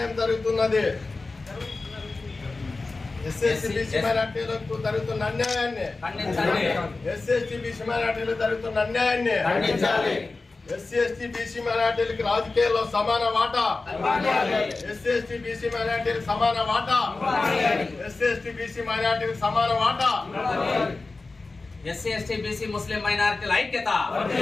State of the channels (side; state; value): right; quieter; 3.6 dB